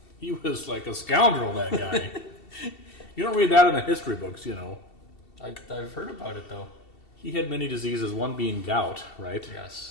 He was like a scoundrel, that guy. You don't read that in the history books, you know. I've heard about it, though. He had many diseases, one being gout, right?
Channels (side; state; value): right; late; 2.7 ms